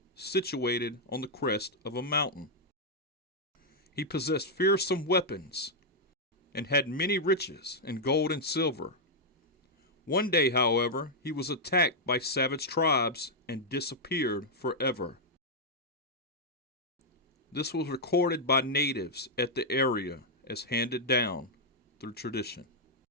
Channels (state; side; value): normal; both; correlation -0.04